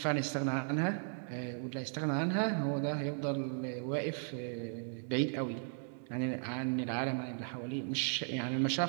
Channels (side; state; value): left; silent; digital silence